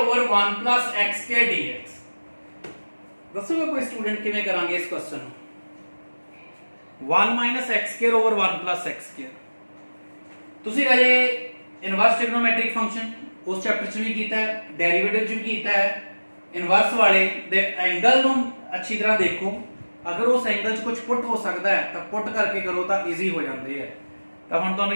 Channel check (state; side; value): inverted; both; correlation -1.00